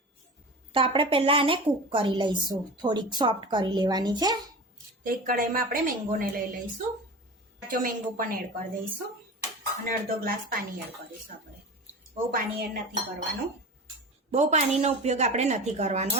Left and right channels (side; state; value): both; normal; correlation 0.31